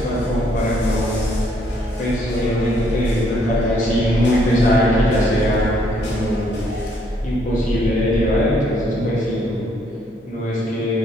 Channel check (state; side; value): normal; both; correlation 0.68